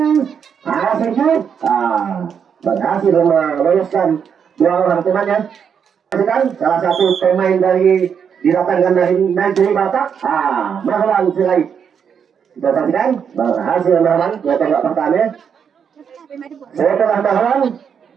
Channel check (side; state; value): left; quieter; 7.3 dB